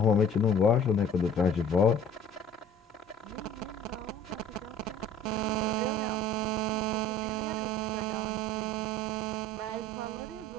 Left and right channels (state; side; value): normal; both; correlation 0.48